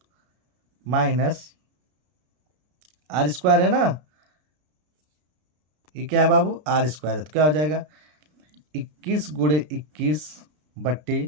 माइनस आर स्क्वायर है ना, ये क्या है बाबू आर स्क्वायर है, तो क्या हो जाएगा 21 ×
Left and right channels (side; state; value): left; late; 33 ms